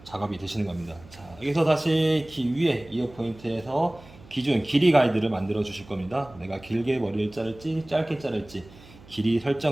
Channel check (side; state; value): right; noise; hum, 22 dB below the sound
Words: 작업이 되시는 겁니다. 자, 여기서 다시 위에 이어 포인트에서 기준 길이 가이드를 만들어 주실 겁니다. 내가 길게 머리를 자를지 짧게 자를지 길이